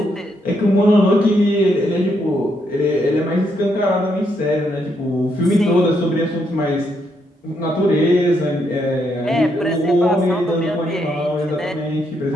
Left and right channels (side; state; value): both; normal; correlation 0.77